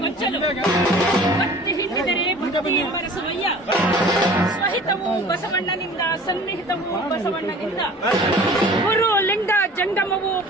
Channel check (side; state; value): both; normal; correlation 0.45